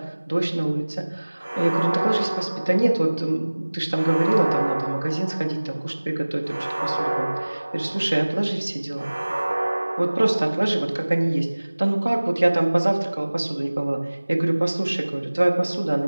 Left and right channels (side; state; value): both; inverted; correlation -1.00